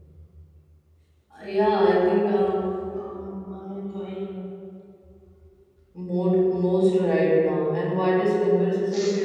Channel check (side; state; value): both; identical; correlation 1.00